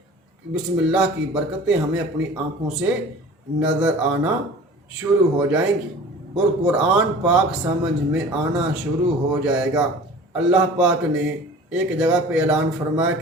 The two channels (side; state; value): both; normal; correlation 0.42